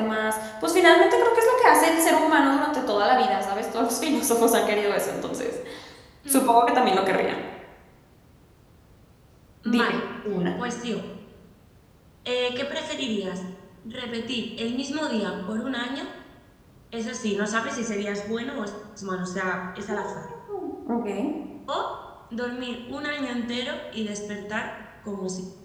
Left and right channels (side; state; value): both; identical; correlation 1.00